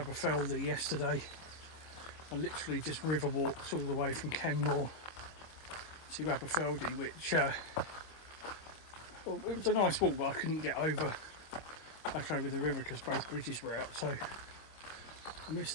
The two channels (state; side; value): late; right; 26 ms